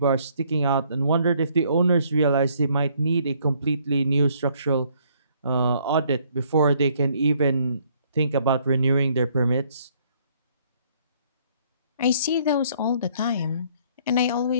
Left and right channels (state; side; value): inverted; both; correlation -0.65